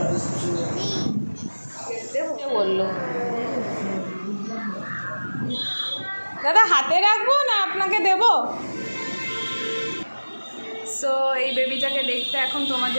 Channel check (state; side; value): inverted; both; correlation -1.00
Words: বললো দাদা হাতে রাখবো না আপনাকে দেবো? সো এই বেবিটাকে দেখতে এখন